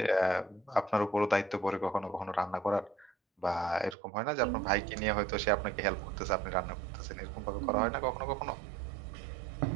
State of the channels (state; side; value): drops out; left; at 4.0 s